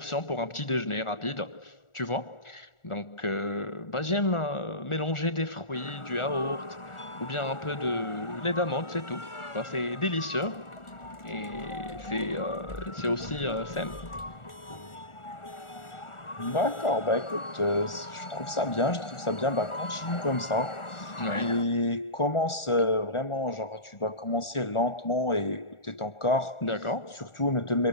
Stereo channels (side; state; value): right; late; 1.4 ms